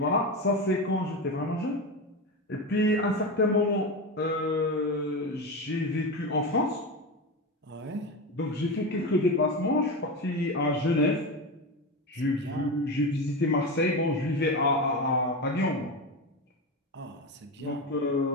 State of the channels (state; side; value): normal; both; correlation 0.19